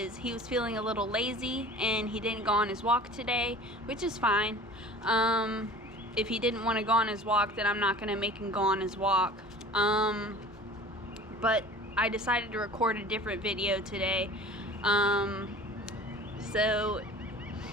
he was feeling a little lazy and he didn't go on his walk today, which is fine. If he didn't want to go on his walk, then I'm not going to make him go on his walk. But I decided to record a different video today. So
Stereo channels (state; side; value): normal; both; correlation 0.42